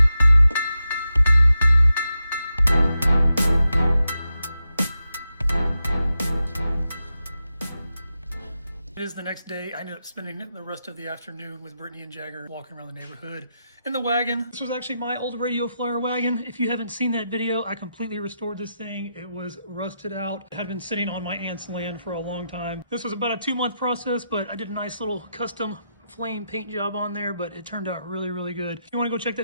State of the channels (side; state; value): both; inverted; correlation -0.87